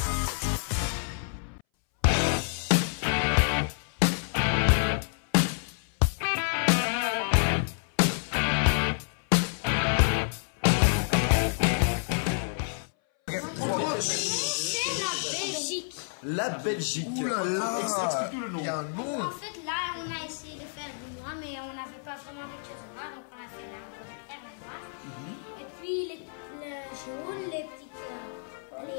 La Belgique. Ouh là là. Explique tout le nom. Il y a un nom. En fait, là, on a essayé de faire du noir, mais on n'avait pas vraiment quelque chose de noir, donc on a fait la noir. Et puis les jaunes, les petites,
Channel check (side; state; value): right; silent; 59 dB below the other